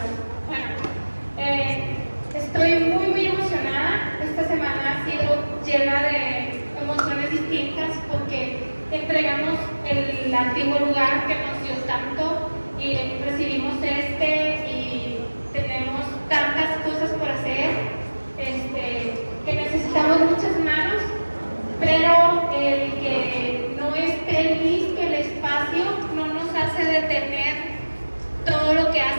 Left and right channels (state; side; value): inverted; both; correlation -1.00